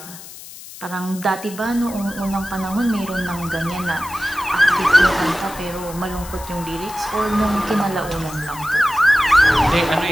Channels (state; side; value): noise; left; hiss, 15 dB below the sound